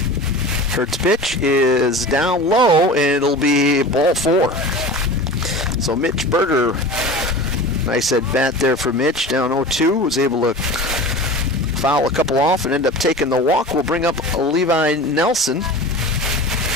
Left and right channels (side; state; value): both; normal; correlation 0.34